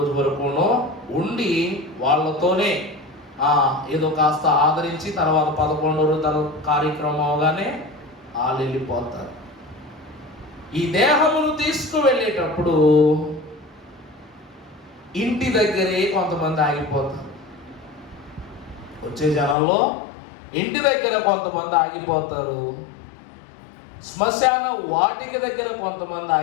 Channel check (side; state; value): right; drops out; at 19.6 s